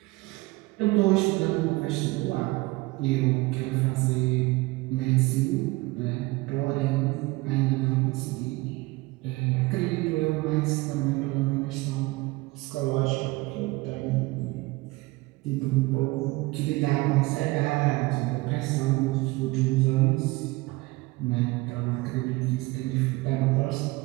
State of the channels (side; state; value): left; quieter; 22.3 dB